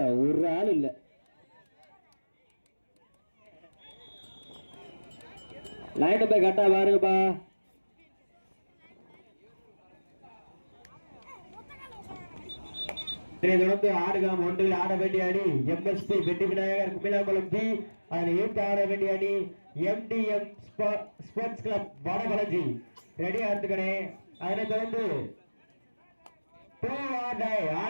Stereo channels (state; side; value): inverted; both; correlation -1.00